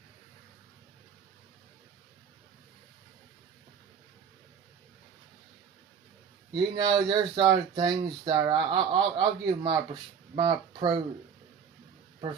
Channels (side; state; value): left; quieter; 7.1 dB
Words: You know, there's other things that I'll give my pro.